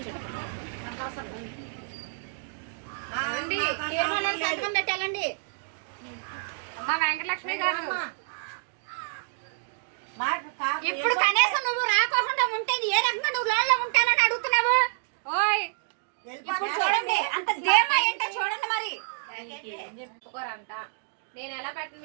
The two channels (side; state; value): left; silent; digital silence